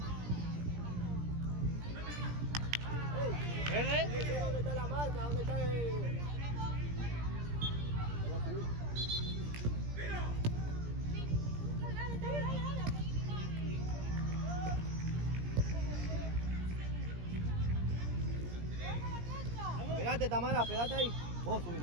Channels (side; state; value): left; late; 17 ms